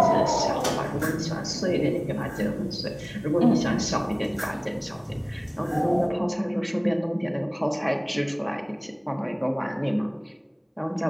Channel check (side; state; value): both; identical; correlation 1.00